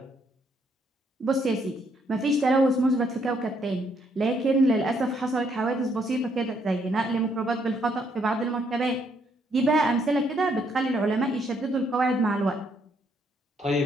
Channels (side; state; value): both; normal; correlation 0.71